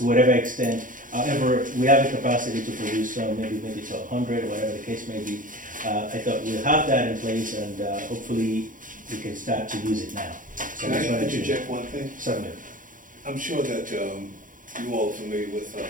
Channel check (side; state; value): left; late; 0.39 ms